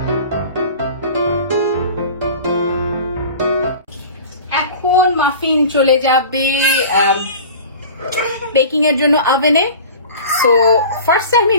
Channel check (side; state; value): both; inverted; correlation -0.39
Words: এখন মাফিন চলে যাবে বেকিং এর জন্য ওভেনে। So first time